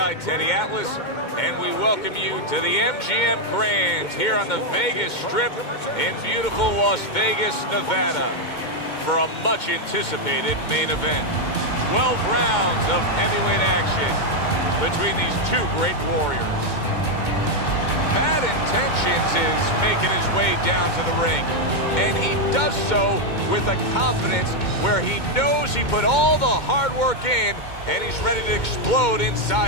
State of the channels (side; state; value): right; late; 2.2 ms